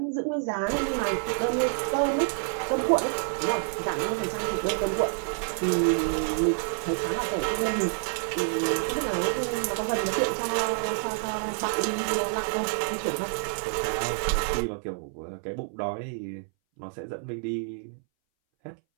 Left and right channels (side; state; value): left; silent; 59 dB below the other